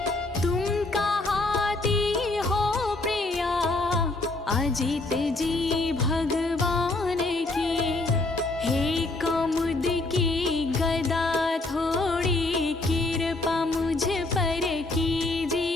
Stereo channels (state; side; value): quieter; right; 3.1 dB